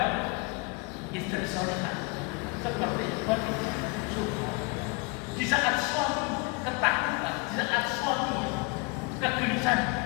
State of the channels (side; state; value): right; quieter; 28.8 dB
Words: Istri solehah seperti Khadijah. Di saat suami ketakutan, di saat suami kegelisahan,